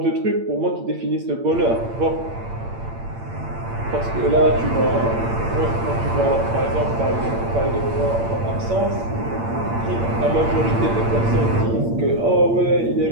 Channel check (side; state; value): left; late; 8.8 ms